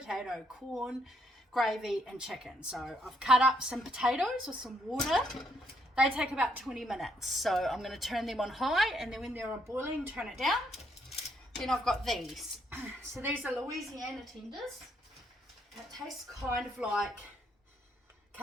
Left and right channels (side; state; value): both; normal; correlation 0.73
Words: corn, gravy and chicken. So I've cut up some potatoes with some water. They take about 20 minutes. So I'm going to turn them on high, and then when they're boiling, turn it down. Then I've got these. So these are Louisiana tenders. It tastes kind of like